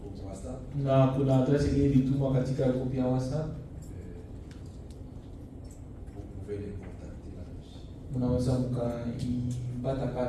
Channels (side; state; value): both; identical; correlation 1.00